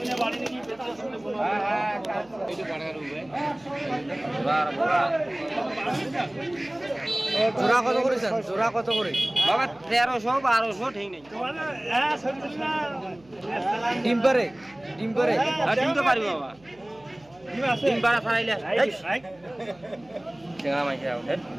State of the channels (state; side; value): noise; right; hum, 28 dB below the sound